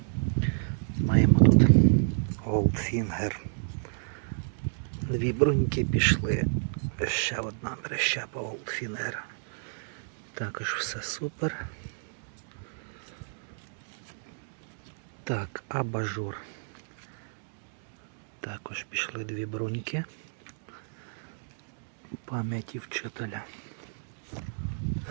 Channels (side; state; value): left; silent; digital silence